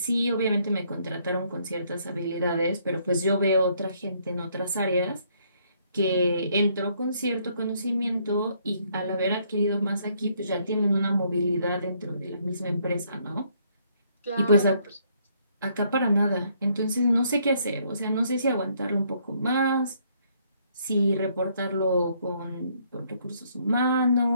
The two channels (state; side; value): inverted; both; correlation -0.68